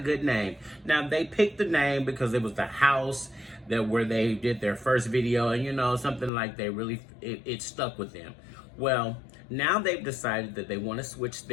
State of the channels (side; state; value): right; drops out; at 6.3 s